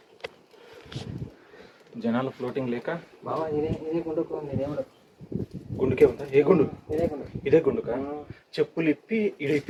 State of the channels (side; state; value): both; identical; correlation 1.00